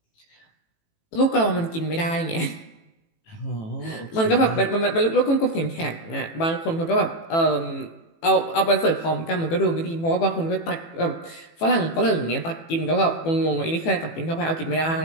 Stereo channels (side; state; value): right; late; 18 ms